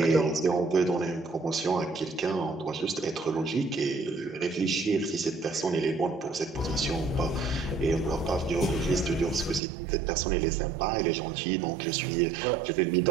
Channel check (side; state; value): left; drops out; at 9.6 s